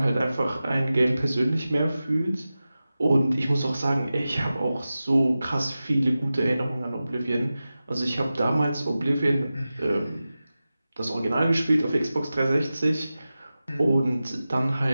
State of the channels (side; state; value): both; inverted; correlation -0.94